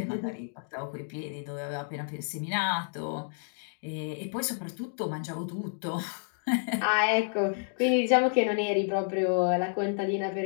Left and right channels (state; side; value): silent; right; digital silence